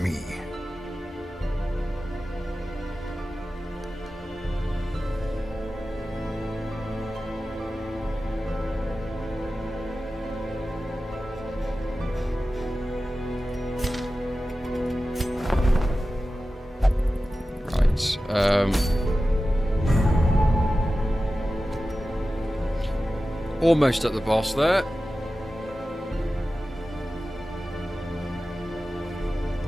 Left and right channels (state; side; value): normal; both; correlation 0.94